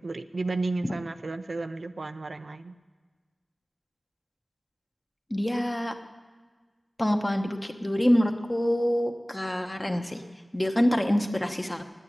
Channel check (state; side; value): normal; both; correlation 0.98